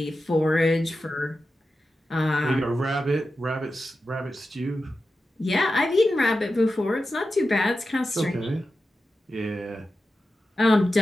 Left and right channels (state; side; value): normal; both; correlation 0.91